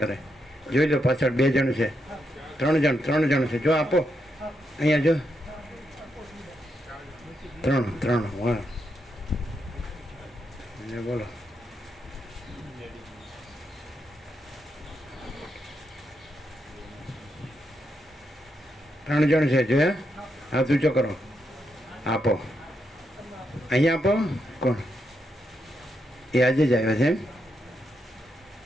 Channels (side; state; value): both; normal; correlation 0.82